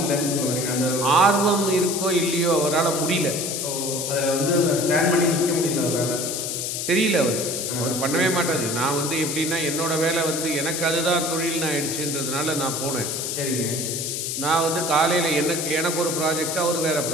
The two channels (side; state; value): left; noise; hiss, 3 dB below the sound